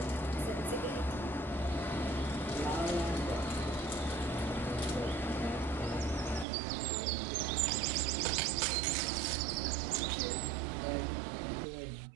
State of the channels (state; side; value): drops out; left; at 6.5 s